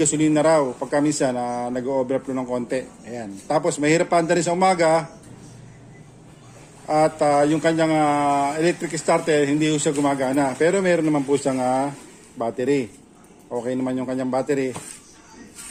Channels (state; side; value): identical; both; correlation 1.00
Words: raw. Pagka minsan nag-overflow ng konti. Ayan. Tapos mahirap pa rin sa umaga. At yung kanyang electric starter hindi po siya gumagana. Pero meron naman po siyang battery. Okay naman yung kanyang battery.